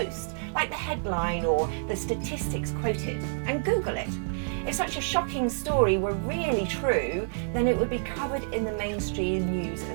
like the headline or the statistics quoted, and Google it. If such a shocking story were really true, then it would be covered in the mainstream news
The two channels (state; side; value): silent; left; digital silence